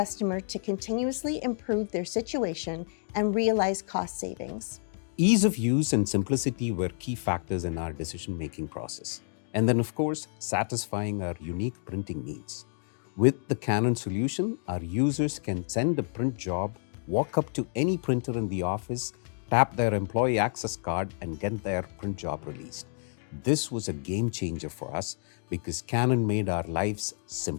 to continuously improve their situation and realize cost savings. Ease of use and simplicity were key factors in our decision-making process. And then, of course, satisfying our unique printing needs. With the Canon solution, our users can send a print job, walk up to any printer in the office, tap their employee access card, and get their print job released. This was a game changer for us because Canon made our lives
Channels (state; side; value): silent; right; digital silence